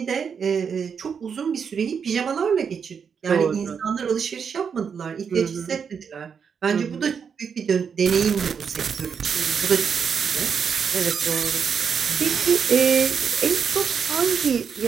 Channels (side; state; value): left; quieter; 6.6 dB